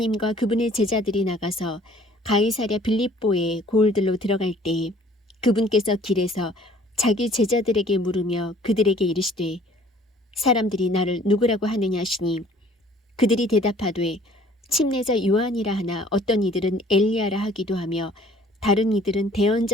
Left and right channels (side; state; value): both; normal; correlation 0.55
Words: 그분의 제자들이 나가서 가이사랴 빌립보의 고을들로 들어갈 때에 그분께서 길에서 자기 제자들에게 물으며 그들에게 이르시되 사람들이 나를 누구라고 하느냐 하시니 그들이 대답하되 침례자 요한이라 하나 어떤 이들은 엘리야라 하기도 하며 다른 이들은